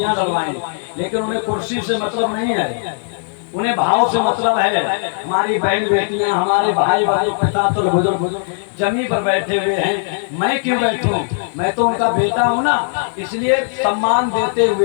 डलवाई, लेकिन उन्हें कुर्सी से मतलब नहीं है, उन्हें भाव से मतलब है। हमारी बहन बेटियां, हमारे भाई भाई पिता तो बुजुर्ग जमीन पर बैठे हुए हैं, मैं क्यों बैठूं, मैं तो उनका बेटा हूं ना, इसलिए सम्मान देते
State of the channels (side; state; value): right; silent; digital silence